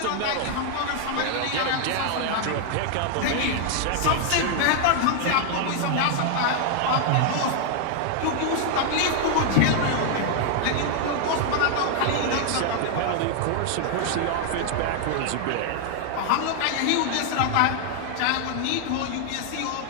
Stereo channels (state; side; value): different; both; correlation 0.00